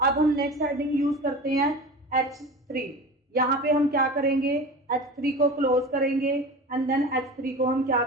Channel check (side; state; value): both; normal; correlation 0.33